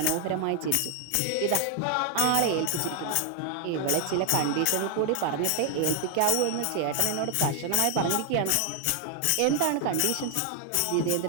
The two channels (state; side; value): different; both; correlation 0.00